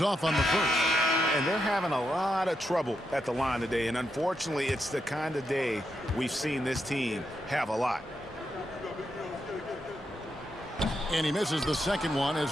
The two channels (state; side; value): normal; both; correlation 0.83